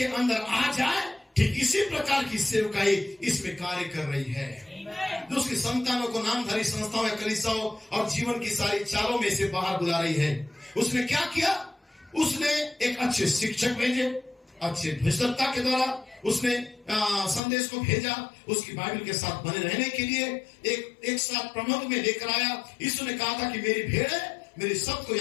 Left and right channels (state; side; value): drops out; right; at 17.4 s